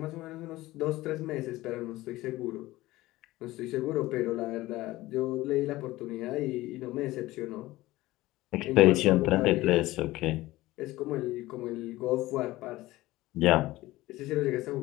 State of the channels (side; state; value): right; quieter; 18.0 dB